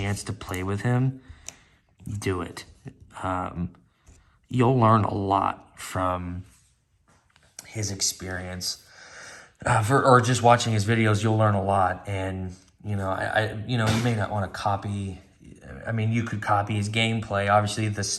to play with him, do it. You'll learn a lot from his experience. Or just watching his videos, you'll learn a lot. And, you may not want to copy. I mean, you could copy his gameplay. Obviously, the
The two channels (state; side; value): identical; both; correlation 1.00